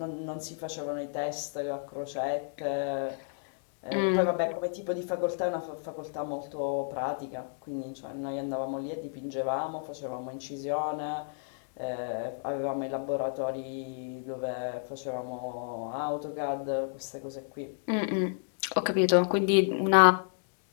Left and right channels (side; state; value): right; silent; digital silence